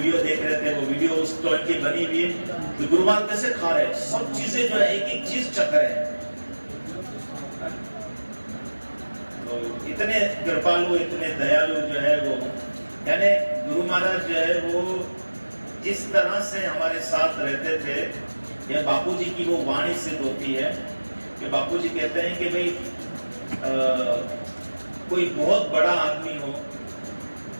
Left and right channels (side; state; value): both; inverted; correlation -1.00